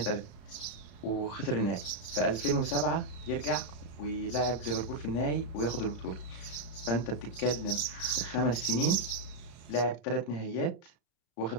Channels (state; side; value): late; right; 34 ms